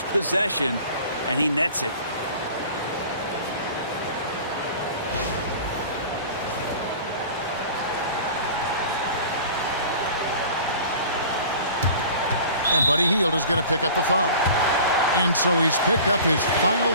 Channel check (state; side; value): inverted; both; correlation -0.42